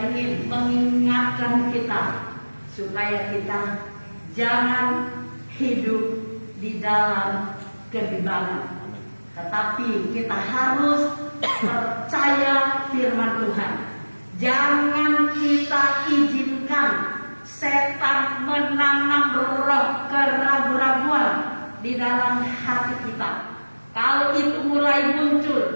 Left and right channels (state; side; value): inverted; both; correlation -1.00